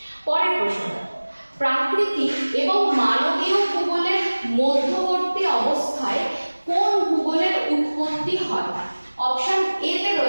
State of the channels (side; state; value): both; inverted; correlation -1.00